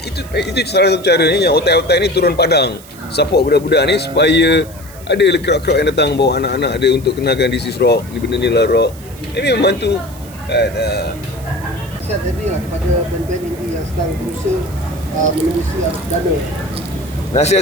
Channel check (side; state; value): right; noise; hiss, 20 dB below the sound